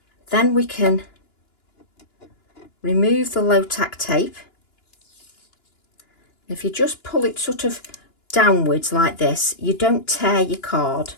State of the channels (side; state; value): right; late; 2.9 ms